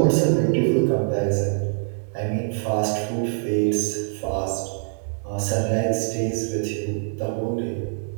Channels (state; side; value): silent; left; digital silence